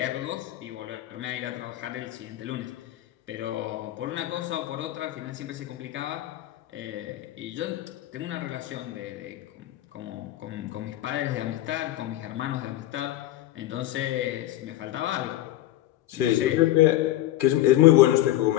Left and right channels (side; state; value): right; quieter; 14.6 dB